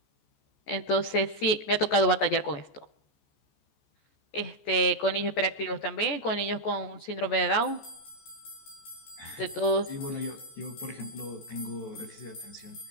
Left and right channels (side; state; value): right; late; 14 ms